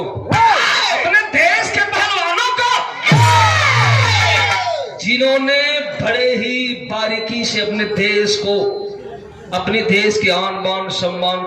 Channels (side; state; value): both; identical; correlation 1.00